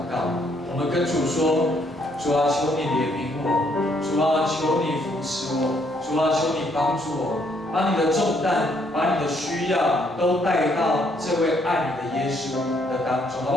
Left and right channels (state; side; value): normal; both; correlation 0.70